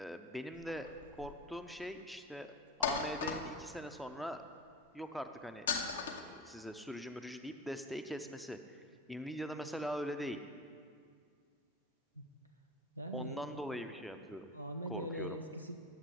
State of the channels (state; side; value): normal; both; correlation 0.27